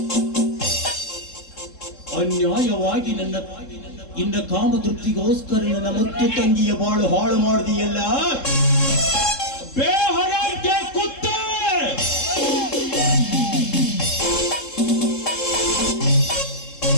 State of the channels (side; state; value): right; late; 3.7 ms